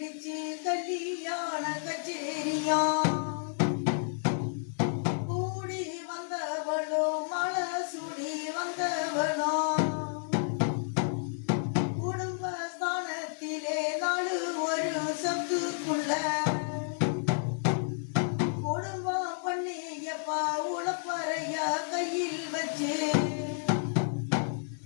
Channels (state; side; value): silent; right; digital silence